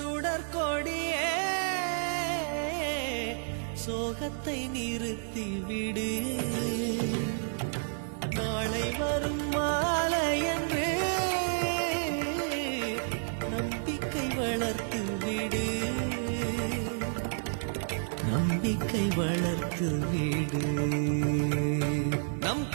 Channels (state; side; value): silent; left; digital silence